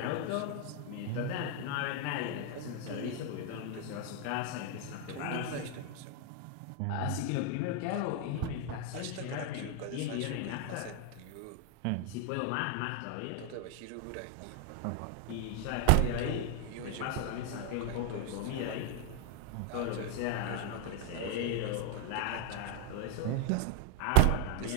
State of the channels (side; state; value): both; different; correlation 0.01